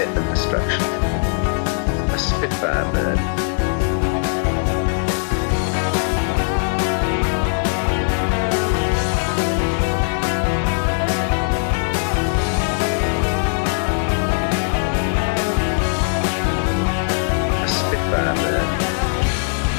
and destruction. A Spitfire bird. A Spitfire bird.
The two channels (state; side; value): silent; right; 63 dB below the other